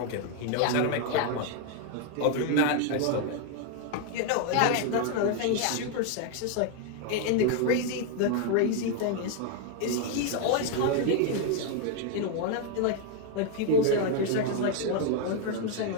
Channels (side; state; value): both; different; correlation 0.00